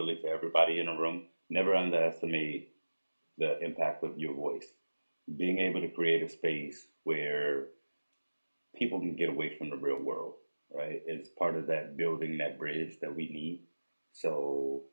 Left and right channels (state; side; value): inverted; both; correlation -1.00